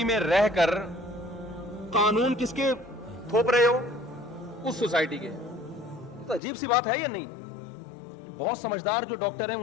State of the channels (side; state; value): right; drops out; at 6.4 s